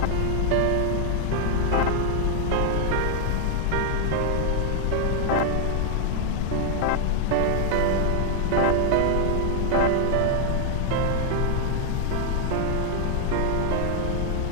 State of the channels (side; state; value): both; different; correlation 0.00